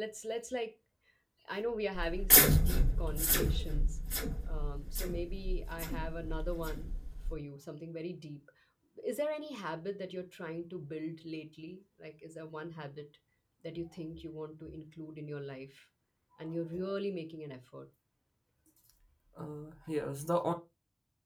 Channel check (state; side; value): identical; both; correlation 1.00